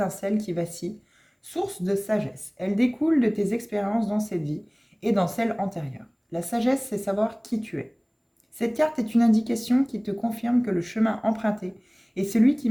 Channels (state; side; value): identical; both; correlation 1.00